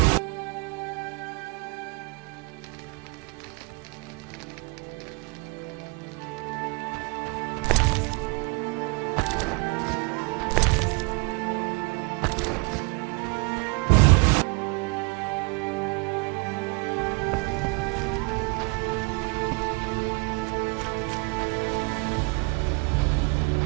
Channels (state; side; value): quieter; left; 28.6 dB